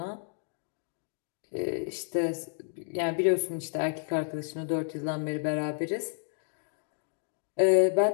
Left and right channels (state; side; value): silent; right; digital silence